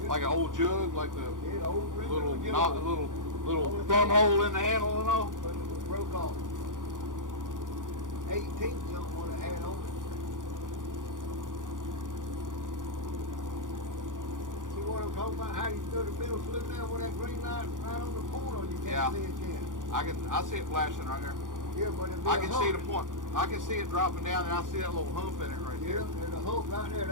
Like an old jug, like the Yeah, old little jug. not little thumb hole in the handle and all. But it was broke off. 18 something what it had on it. See what I'm talking about? How you stood in the middle, slid down with that green light right on the corner. You can't Yeah. see it yet. I see it flashing right there. Yeah, but it's I can see the point. I can see it dropping down, and I see that little hump in it right Yeah, there. there's a hook right there.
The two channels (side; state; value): left; late; 0.88 ms